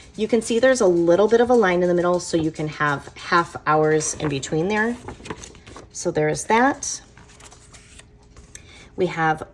You can see there's a little bit of a line in the middle, so you can have half hours in between there. So there's that. We have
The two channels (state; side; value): identical; both; correlation 1.00